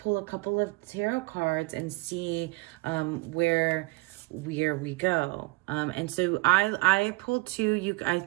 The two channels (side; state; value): left; quieter; 23.2 dB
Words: a couple of tarot cards and see where we go. And so I pulled two. You